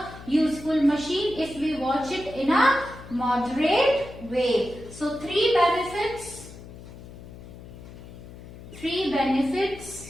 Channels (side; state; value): left; noise; hum, 16 dB below the sound